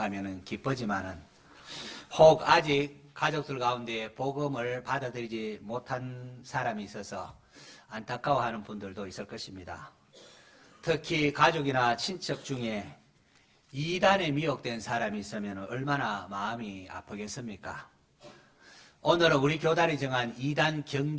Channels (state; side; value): identical; both; correlation 1.00